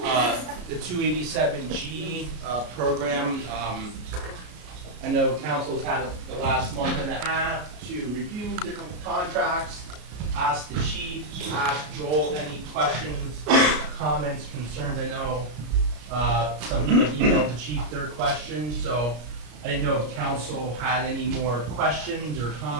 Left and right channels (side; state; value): left; late; 33 ms